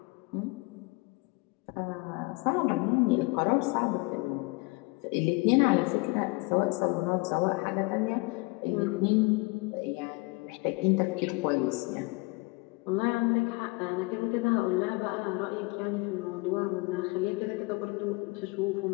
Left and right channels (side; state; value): right; quieter; 26.1 dB